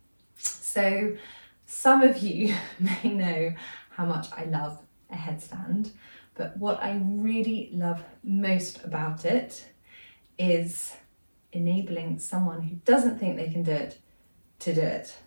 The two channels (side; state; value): both; inverted; correlation -1.00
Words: So some of you may know how much I love a headstand, but what I really love most about it is enabling someone who doesn't think they can do it to do it.